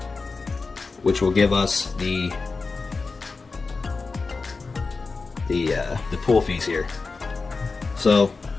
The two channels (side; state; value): right; quieter; 4.1 dB